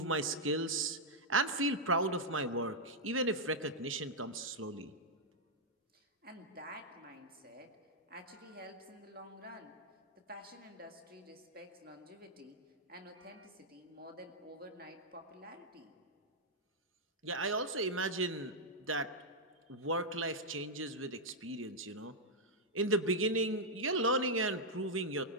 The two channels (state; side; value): normal; both; correlation -0.05